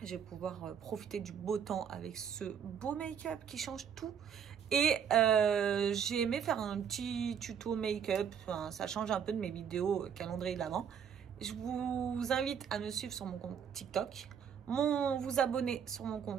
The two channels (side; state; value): left; quieter; 7.8 dB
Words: Je vais pouvoir profiter du beau temps avec ce beau make-up qui change tout. Et j'ai aimé faire un petit tuto make-up. Enfin, ça change un peu de mes vidéos calendrier de l'avant. Je vous invite à me suivre sur mon compte TikTok. Vous abonner sur mon